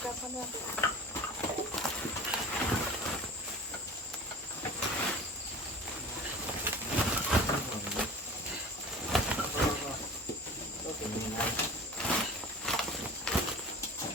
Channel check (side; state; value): both; normal; correlation 0.38